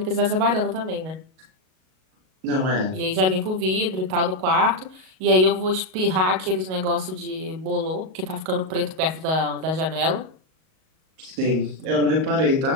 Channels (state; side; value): late; left; 38 ms